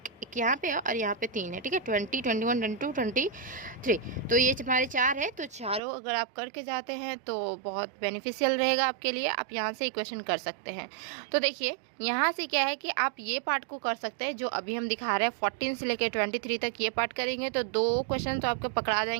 यहाँ पे और यहाँ पे 3 है। ठीक है, 20, 21, 22, 23, तो ये हमारे 4 है। तो चारों अगर आप करके जाते हैं तो बहुत बेनिफिशियल रहेगा आपके लिए, आप यहाँ से इक्वेशन कर सकते हैं। तो देखिए यहाँ से क्या है कि आप ये पार्ट को कर सकते हैं जो अभी हम दिखा रहे हैं, 14 से लेकर 23 तक ये पार्ट करेंगे तो 2 क्वेश्चन तो आपके पकड़ा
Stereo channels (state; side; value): drops out; left; at 5.8 s